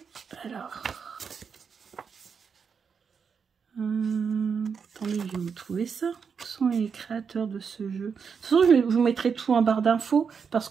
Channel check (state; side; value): quieter; left; 6.2 dB